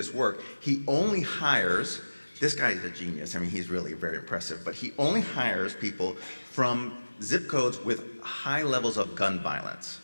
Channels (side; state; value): both; inverted; correlation -1.00